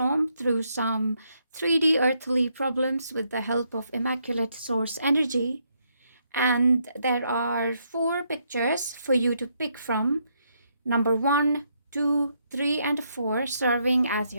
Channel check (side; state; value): both; inverted; correlation -0.76